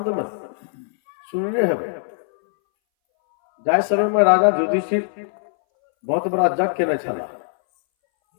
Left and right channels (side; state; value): right; silent; 62 dB below the other